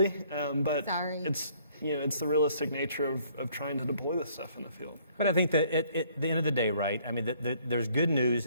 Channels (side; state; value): both; inverted; correlation -0.62